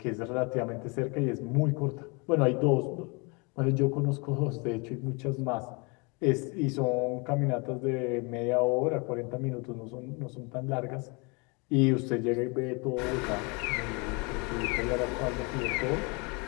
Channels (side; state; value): right; quieter; 30.6 dB